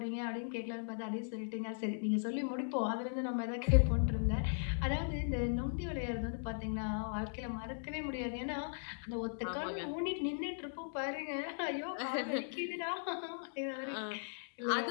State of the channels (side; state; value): right; silent; digital silence